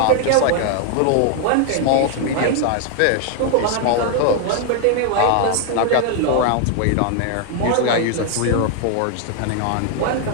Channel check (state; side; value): different; both; correlation 0.00